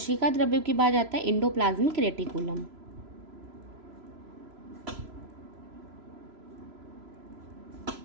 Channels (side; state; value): left; late; 3.0 ms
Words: द्रव्य के बाद आता है endoplasmic reticulum.